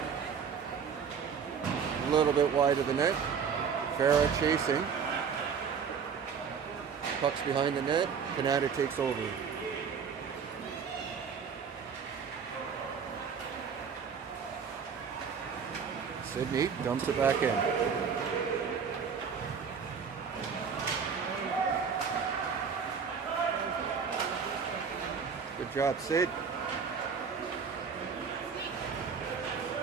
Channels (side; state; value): left; quieter; 6.4 dB